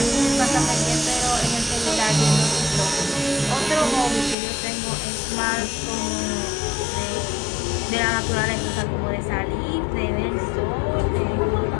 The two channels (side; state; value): right; drops out; at 4.4 s